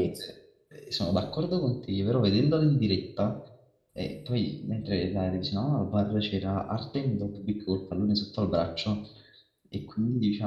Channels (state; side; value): identical; both; correlation 1.00